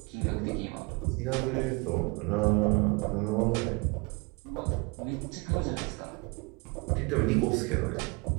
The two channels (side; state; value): left; quieter; 28.3 dB